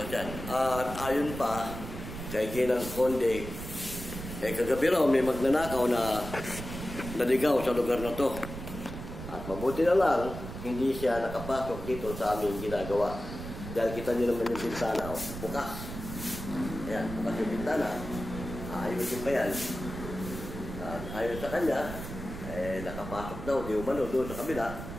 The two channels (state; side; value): noise; right; rumble, 9 dB below the sound